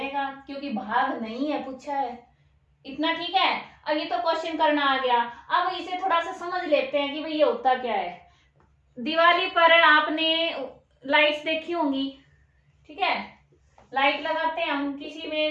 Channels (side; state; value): both; identical; correlation 1.00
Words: क्योंकि भाग नहीं है पूछा है। इतना ठीक है। अब ये तो क्वेश्चन करना आ गया। अब इसे थोड़ा सा समझ लेते हैं कि भाई ये होता क्या है। दिवाली पर आपने लाइट्स देखी होंगी, ठीक है, लाइट लगाते हैं हम, किसी